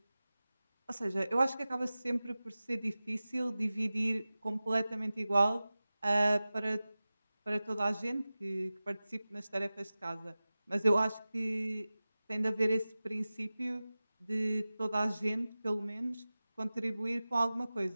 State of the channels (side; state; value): both; inverted; correlation -0.97